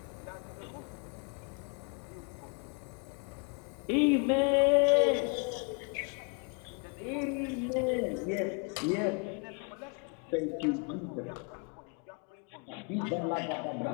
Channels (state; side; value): quieter; right; 34.8 dB